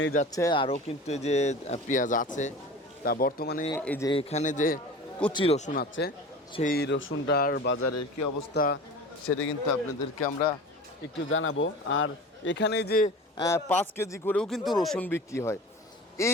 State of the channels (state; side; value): normal; both; correlation 0.36